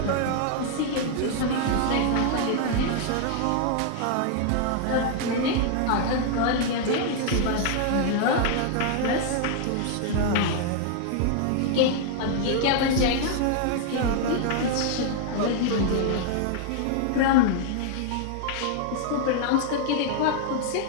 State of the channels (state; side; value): different; both; correlation 0.00